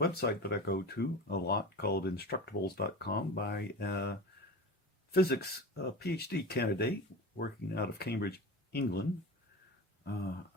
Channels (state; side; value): normal; both; correlation 0.30